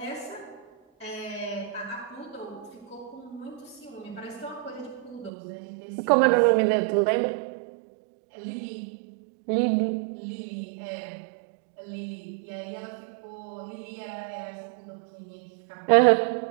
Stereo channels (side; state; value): left; drops out; at 5.3 s